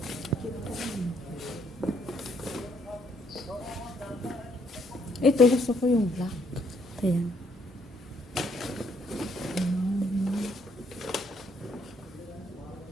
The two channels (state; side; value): normal; both; correlation 0.69